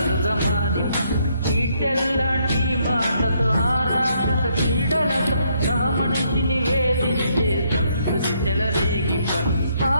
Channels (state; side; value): inverted; both; correlation -0.72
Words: మారిప, చీటెల్లాంటి మాటతో ఆరాక్షస క్రీడలతో సహమనిషిని వేధించే సంస్కృతి చెలరేగిప,